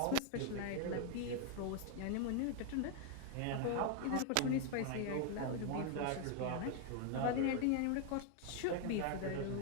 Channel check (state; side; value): different; both; correlation 0.00